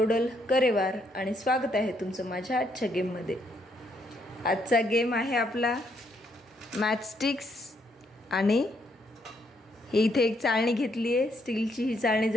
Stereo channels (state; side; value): normal; both; correlation 0.73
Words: करेवार आणि स्वागत आहे तुमचं माझ्या आजच्या गेममध्ये। आजचा गेम आहे आपला मॅचस्टिक्स आणि इथे एक चाळणी घेतली आहे स्टीलची। ही चाळणी